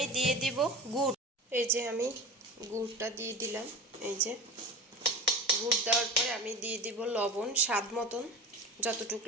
দিয়ে দিব গুড়। এই যে আমি গুড়টা দিয়ে দিলাম। এই যে গুড় দেওয়ার পরে আমি দিয়ে দিব লবণ স্বাদ মতন, যতটুকু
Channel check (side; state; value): both; normal; correlation 0.31